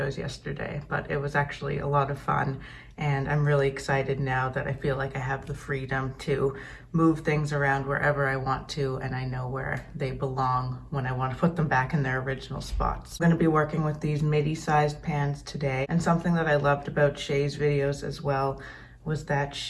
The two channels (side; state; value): both; identical; correlation 1.00